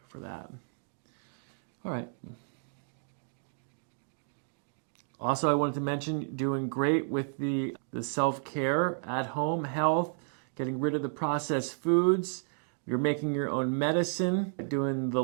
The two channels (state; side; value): silent; left; digital silence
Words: for that. All right. Also, I wanted to mention doing great with the self-care, at-home health, getting rid of the processed foods. You're making your own medicine, doing the